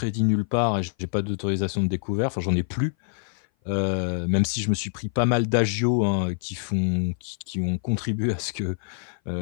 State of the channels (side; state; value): right; silent; 58 dB below the other